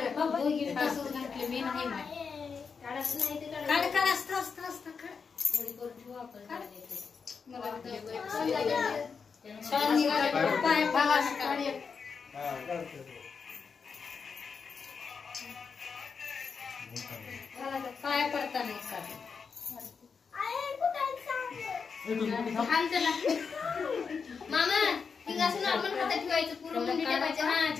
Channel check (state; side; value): quieter; right; 5.6 dB